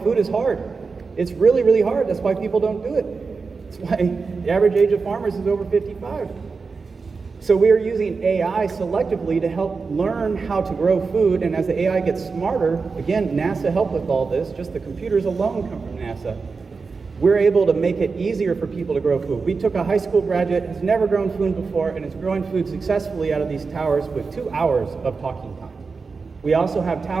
food is hard. It's really, really hard. That's why people don't do it. That's why the average age of farmers is over 55. So we are using AI selectively to help learn how to grow food, and as the AI gets smarter, again, NASA helped with all this, just the computers alone come from NASA. We're able to make it easier for people to grow food. We took a high school graduate who's never grown food before, and is growing food successfully out of these towers with 2 hours of talking time. We also have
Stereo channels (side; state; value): left; quieter; 4.6 dB